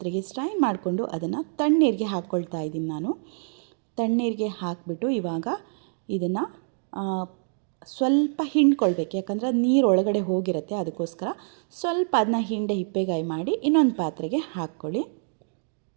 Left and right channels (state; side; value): silent; left; 61 dB below the other